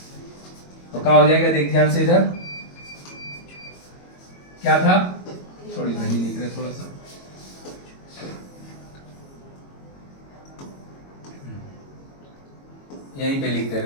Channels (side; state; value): right; late; 22 ms